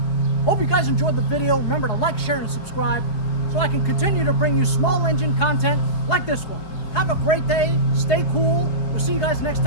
Hope you guys enjoyed the video. Remember to like, share, and subscribe so I can continue to bring you small engine content like this one. Have a great day. Stay cool. We'll see you guys next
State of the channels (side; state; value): right; late; 5.0 ms